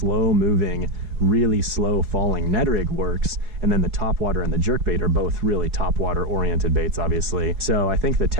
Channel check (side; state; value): left; late; 4.7 ms